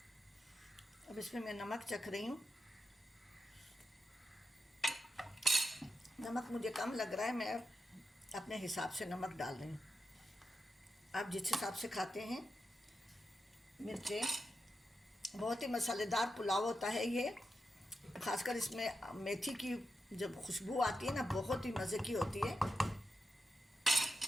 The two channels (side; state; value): both; normal; correlation 0.88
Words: अब इसमें मैं नमक चख रही हूँ। नमक मुझे कम लग रहा है, मैं अपने हिसाब से नमक डाल रही हूँ। आप जिस हिसाब से खाते हैं। मिर्चें, बहुत ही मसालेदार पुलाव होता है ये। ख़ासकर इसमें मेथी की जब खुशबू आती है ना, बहुत ही मज़े की होती है।